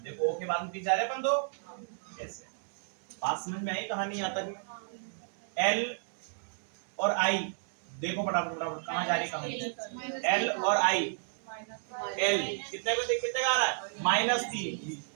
देखो ओ के बाद में पीछे जा रहे अपन 2, ऐसे। बात समझ में आई कहानी? यहाँ तक एल और आई देखो फटाफट फटाफट कहाँ जा रही कहानी? एल और आई, एल कितने पे कितने का आ रहा है? -3।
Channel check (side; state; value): left; silent; digital silence